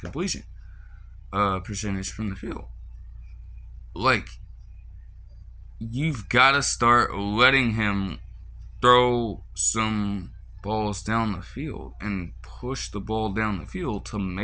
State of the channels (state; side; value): identical; both; correlation 1.00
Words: percentage from the field. You've got to start letting him throw some balls down the field and push the ball down the field to